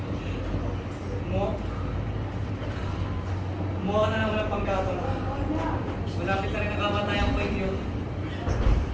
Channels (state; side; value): identical; both; correlation 1.00